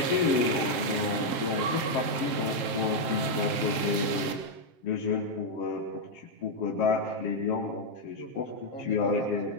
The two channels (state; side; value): late; right; 7.6 ms